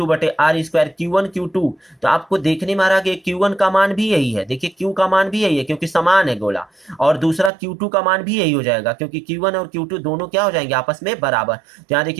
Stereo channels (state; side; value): drops out; left; at 7.5 s